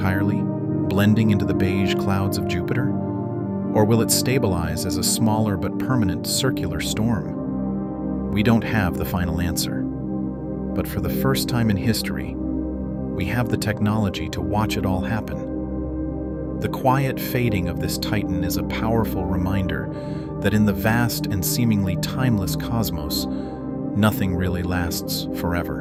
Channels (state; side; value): identical; both; correlation 1.00